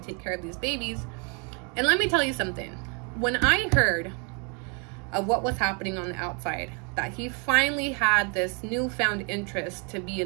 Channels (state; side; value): quieter; left; 35.4 dB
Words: care of these babies. And let me tell you something. When I heard of what was happening on the outside, that he finally had this newfound interest to be